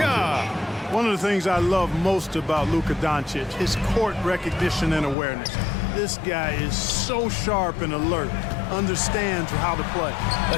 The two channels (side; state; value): right; drops out; at 5.2 s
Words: One of the things I love most about Luka Doncic, his court recognition and awareness. This guy is so sharp and alert, understands how to play.